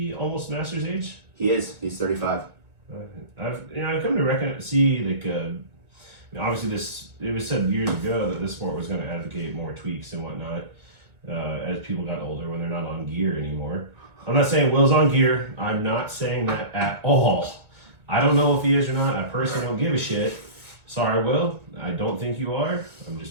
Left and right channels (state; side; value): late; left; 1.6 ms